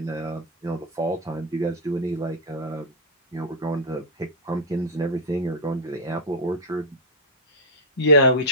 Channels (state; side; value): normal; both; correlation -0.04